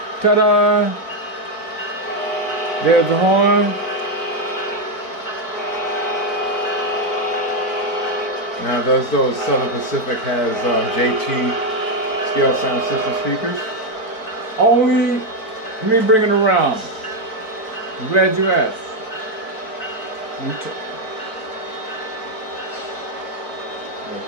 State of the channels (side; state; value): right; late; 4.5 ms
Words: Ta-da! There's the horn. Now, does those Southern Pacific has JT scale sound system speakers? Only, let me bring it around. I'm glad you asked.